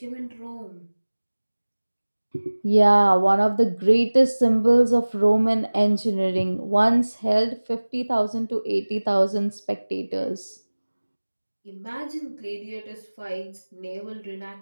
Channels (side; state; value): both; inverted; correlation -1.00